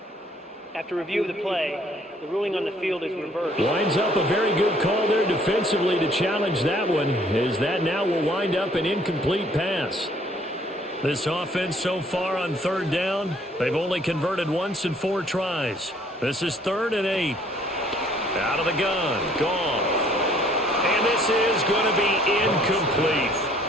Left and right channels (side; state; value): both; normal; correlation 0.60